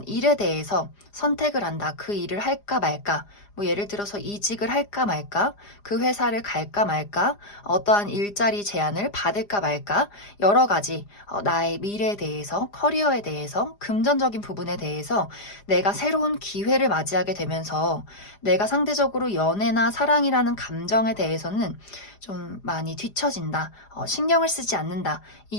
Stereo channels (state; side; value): late; right; 4.9 ms